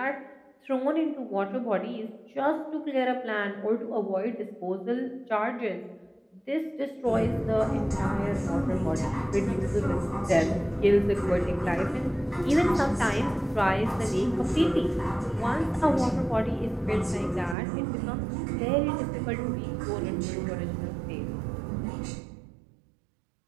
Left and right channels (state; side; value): drops out; left; at 17.6 s